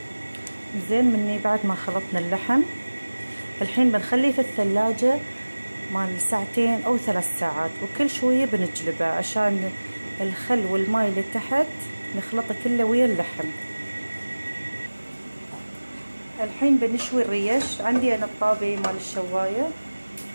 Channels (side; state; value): both; inverted; correlation -1.00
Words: زين. مني بعد ما خلطنا اللحم الحين بنخليه في الثلاجة مال ساعتين او 3 ساعات، وكل شوية بنجلبه عشان الخل والماي اللي تحت نخلطه كله ويا اللحم. الحين بنشوي الريش. عندي انا الطابة مال الشواية،